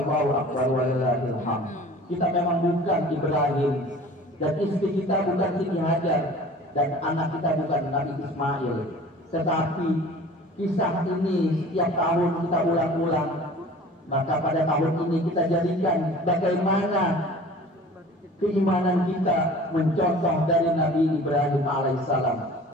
Akbar, walillahil hamd. Kita memang bukan Ibrahim, dan istri kita bukan Siti Hajar, dan anak kita bukan Nabi Ismail. Tetapi kisah ini setiap tahun kita ulang-ulang. Maka pada tahun ini kita jadikan bagaimana keimanan kita mencontoh dari Nabi Ibrahim alaihissalam.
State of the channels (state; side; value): normal; both; correlation 0.44